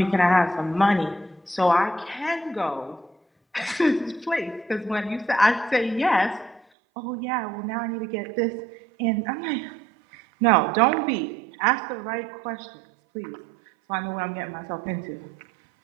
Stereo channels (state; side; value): drops out; left; at 6.6 s